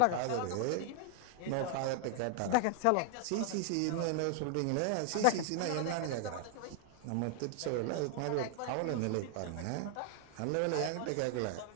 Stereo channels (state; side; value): different; both; correlation 0.00